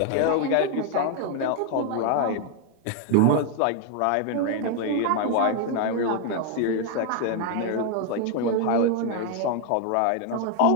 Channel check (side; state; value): both; different; correlation 0.00